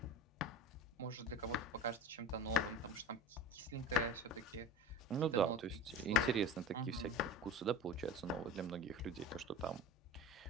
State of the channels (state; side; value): normal; both; correlation 0.30